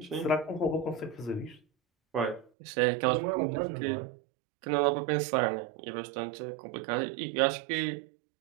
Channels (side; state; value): left; drops out; at 2.5 s